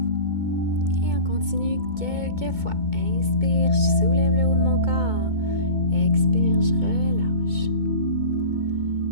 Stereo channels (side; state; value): left; late; 2.2 ms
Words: continue quelques fois. Inspire, je soulève le haut de mon corps. Expire, je relâche.